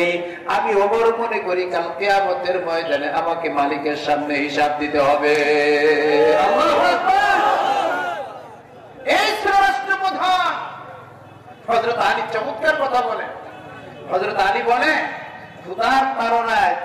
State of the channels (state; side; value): identical; both; correlation 1.00